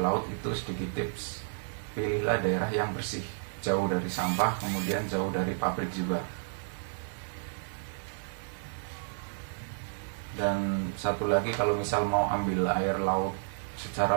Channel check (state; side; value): silent; left; digital silence